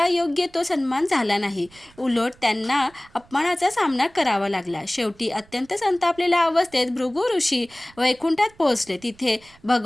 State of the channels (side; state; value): right; noise; rumble, 27 dB below the sound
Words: योग्य तो सन्मान झाला नाही। उलट त्यांना अपमानाचा सामना करावा लागला। शेवटी अत्यंत संतापलेल्या अवस्थेत भृगू ऋषी वैकुंठात पोहोचले। तिथे